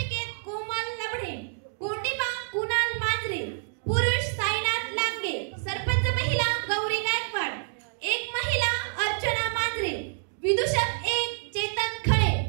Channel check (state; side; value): silent; left; digital silence